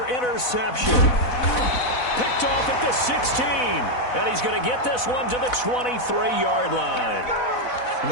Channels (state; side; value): late; right; 4.0 ms